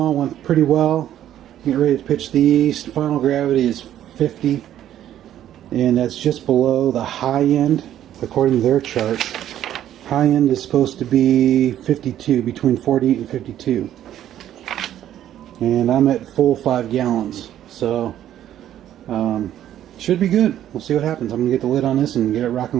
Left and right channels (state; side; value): quieter; left; 11.6 dB